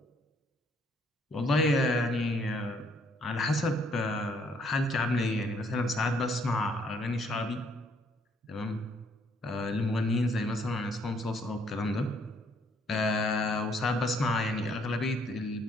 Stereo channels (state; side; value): normal; both; correlation 0.66